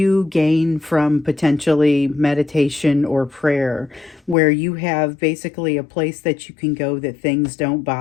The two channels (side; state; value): right; drops out; at 4.4 s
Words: gain from potentially meditation or prayer, where you have basically a place that you can go that things don't